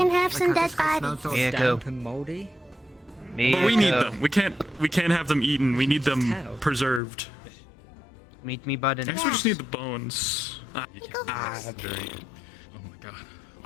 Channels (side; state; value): right; drops out; at 7.0 s